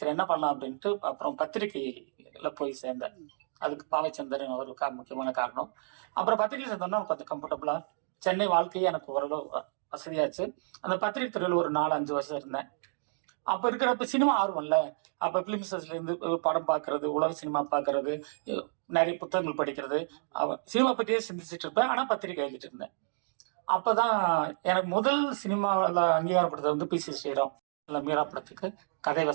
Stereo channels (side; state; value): left; silent; digital silence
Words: என்ன பண்ணலாம் அப்படின்ட்டு அப்புறம் பத்திரிகையில போய் சேர்ந்தேன். அதுக்கு பாவைச்சந்திரன் ஒரு முக்கியமான காரணம். அப்புறம் பத்திரிகை சேர்ந்தோம்னா கொஞ்சம் கம்ஃபர்டபுளா சென்னை வாழ்க்கையே எனக்கு ஓரளவு வசதியாச்சு. அந்த பத்திரிகை துறையில் ஒரு 4-5 வருஷம் இருந்தேன். அப்ப இருக்கிறப்ப சினிமா ஆர்வம்ல, அப்ப பிலிம்ஸ்ல இருந்து படம் பார்க்கறது, உலக சினிமா பார்க்கறது, நிறைய புத்தகங்கள் படிக்கிறது, சினிமா பற்றியே சிந்திச்சுட்டு இருப்பேன். ஆனா பத்திரிகை எழுதிட்டு இருந்தேன். அப்பதான் எனக்கு முதல் சினிமாவில் அங்கீகாரம் கொடுத்தது பி.சி. ஸ்ரீராம் மீரா படத்துக்கு கதை